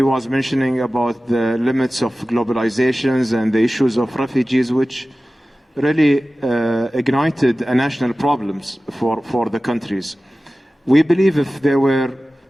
was mentioning about the limits of globalizations and the issues of refugees, which really ignited national problems for the countries. We believe if there were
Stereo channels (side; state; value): both; normal; correlation 0.96